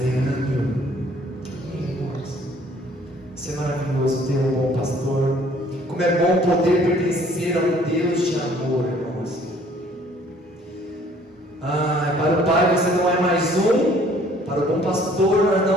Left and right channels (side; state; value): both; normal; correlation 0.58